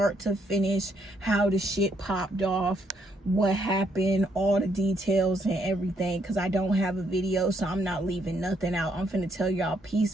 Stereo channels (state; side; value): normal; both; correlation 0.73